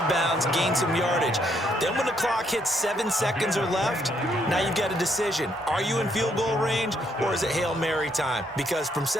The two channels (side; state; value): both; normal; correlation 0.72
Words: bounds, gain some yardage. Then when the clock hits 7 seconds or left, now you've got a decision. Are you in field goal range, or is it Hail Mary time? Because from